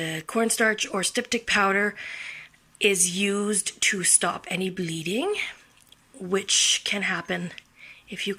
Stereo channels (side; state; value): both; identical; correlation 1.00